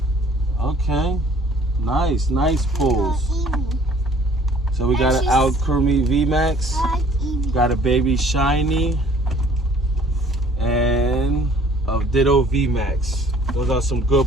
Okay, nice pulls. Eevee. So we got an Alchemy VMAX, I like Eevee. got a baby Shiny, and a Ditto VMAX. Those are some good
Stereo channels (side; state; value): both; normal; correlation 0.55